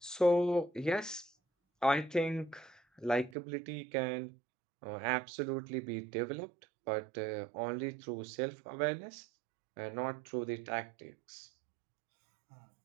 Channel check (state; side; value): drops out; left; at 3.4 s